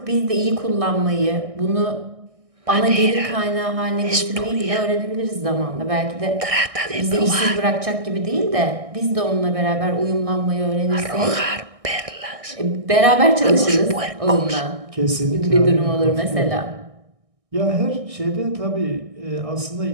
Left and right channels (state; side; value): late; left; 1.6 ms